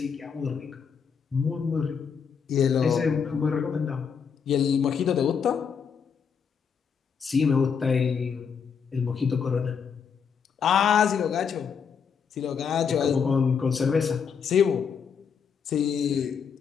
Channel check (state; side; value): quieter; right; 6.6 dB